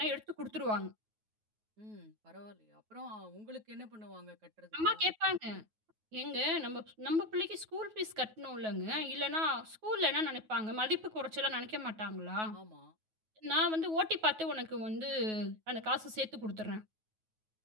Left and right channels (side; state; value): left; late; 9.3 ms